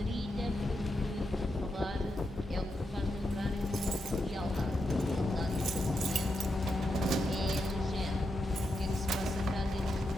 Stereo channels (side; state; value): both; normal; correlation 0.85